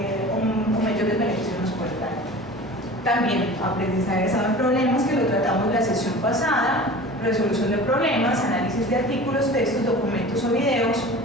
o mayores beneficios nos puede dar. También aprendizaje basado en problemas, que lo tratamos la sesión pasada, resolución de problemas, análisis de artículos, textos, documentos o videos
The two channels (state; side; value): normal; both; correlation 0.39